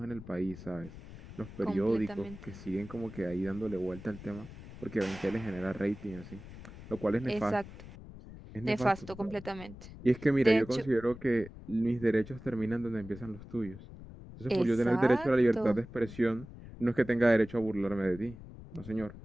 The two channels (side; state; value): left; noise; rumble, 15 dB below the sound